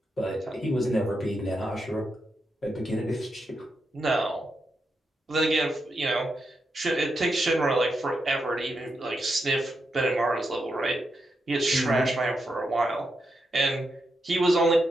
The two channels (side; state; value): both; normal; correlation 0.84